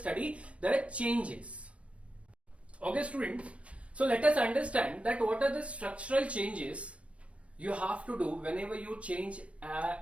the changes. Okay students, so let us understand that what are the structural changes you have to do whenever you change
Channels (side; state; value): left; late; 0.062 ms